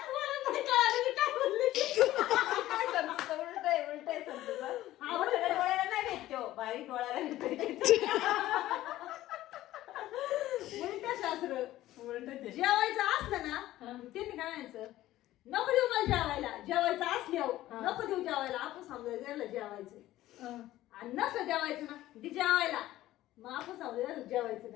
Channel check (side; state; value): right; quieter; 15.1 dB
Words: बारीक डोळ्याला शास्त्र जेवायचं असलं ना त्यांनी काय म्हणायचं नको देऊ मला जेवायला, जेवायचं असल्यावर नको देऊ जेवायला. आपण समजायचं याला जेवायचं आणि नसलं जेवायचं ना ते जेवायला, मग आपण समजायचं जेवायचं